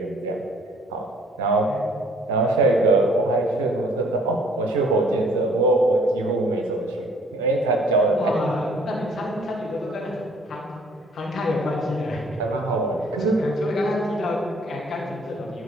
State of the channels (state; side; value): normal; both; correlation 0.59